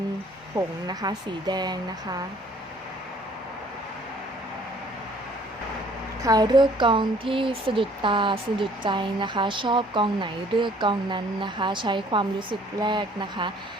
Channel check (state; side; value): normal; both; correlation 0.57